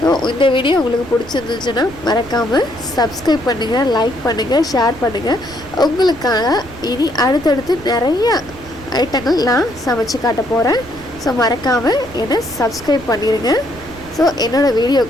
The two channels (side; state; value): right; noise; rumble, 18 dB below the sound